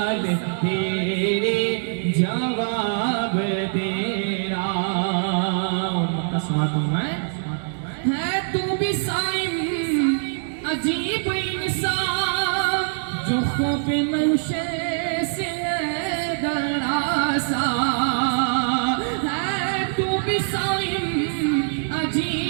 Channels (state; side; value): silent; left; digital silence